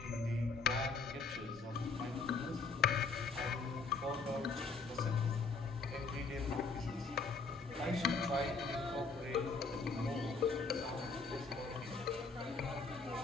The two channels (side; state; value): right; quieter; 4.3 dB